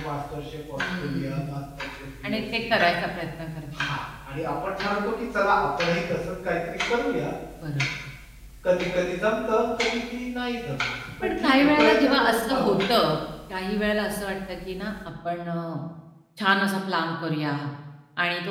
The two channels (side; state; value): both; identical; correlation 1.00